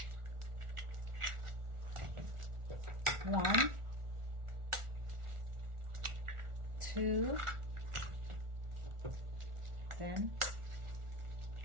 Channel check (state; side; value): late; left; 1.4 ms